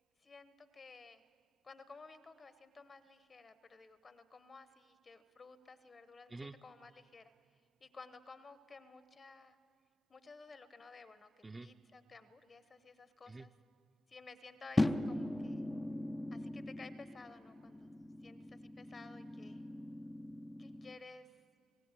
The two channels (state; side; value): normal; both; correlation 0.97